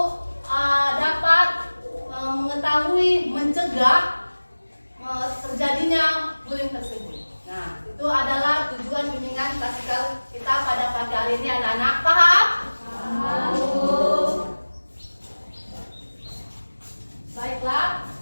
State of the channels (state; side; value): inverted; both; correlation -1.00